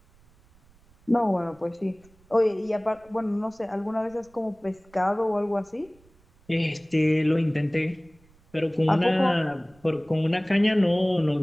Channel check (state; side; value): noise; right; rumble, 30 dB below the sound